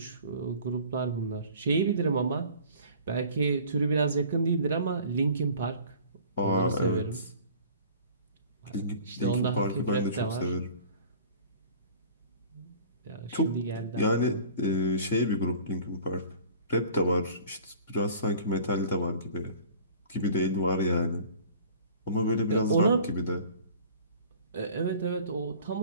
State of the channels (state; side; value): inverted; both; correlation -0.46